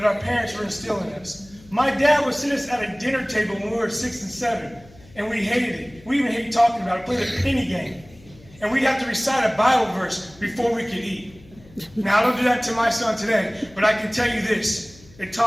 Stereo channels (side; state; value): left; noise; hum, 24 dB below the sound